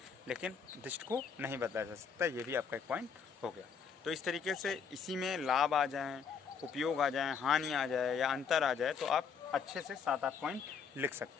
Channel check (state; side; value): quieter; right; 6.5 dB